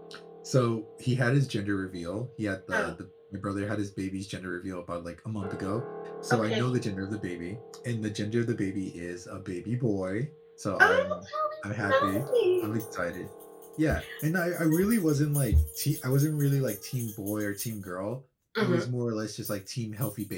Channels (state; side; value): identical; both; correlation 1.00